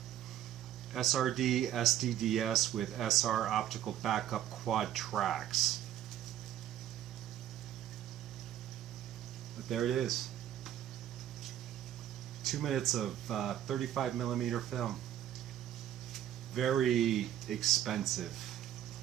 SRD SDDS with SR optical backup quad tracks. But there it is. 2 minutes of 35mm film. Very expensive.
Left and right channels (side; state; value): left; quieter; 11.7 dB